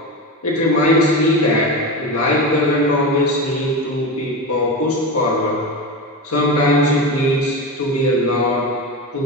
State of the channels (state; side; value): normal; both; correlation 0.22